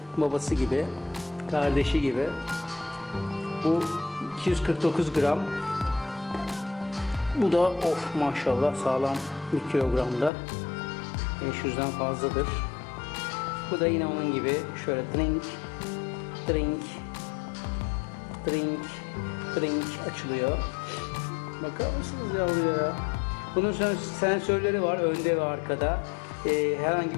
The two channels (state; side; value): drops out; right; at 10.3 s